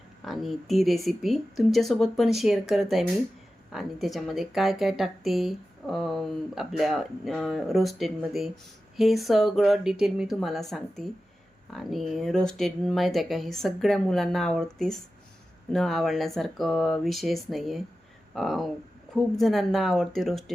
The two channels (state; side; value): normal; both; correlation 0.94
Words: आणि ती रेसिपी तुमच्यासोबत पण शेअर करत आहे मी. आणि त्याच्यामध्ये काय काय टाकते आपल्या रोस्टेडमध्ये हे सगळं डिटेल मी तुम्हाला सांगते. आणि रोस्टेड माहीत आहे का, हे सगळ्या मुलांना आवडतेच, न आवडण्यासारखं विषयच नाही आहे. खूप जणांना आवडते